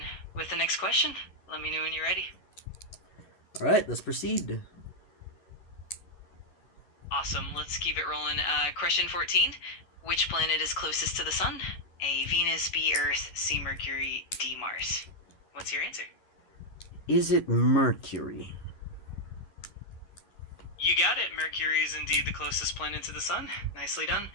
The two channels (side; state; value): right; late; 11 ms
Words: with the next question. Let me know when you're ready. All right, let's proceed. Awesome. Let's keep it rolling. Question 14. Which planet is closest to the sun? A. Venus, B. Earth, C. Mercury, D. Mars. What's your answer? Is it Mercury? You got it. Mercury is indeed the closest planet to the sun. Nicely done.